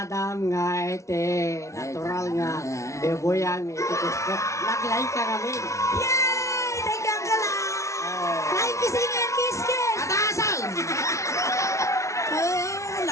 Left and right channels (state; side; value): late; right; 0.14 ms